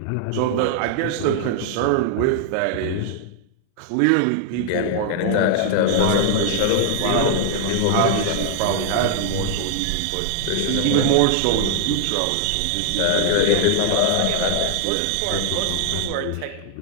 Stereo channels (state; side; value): different; both; correlation -0.01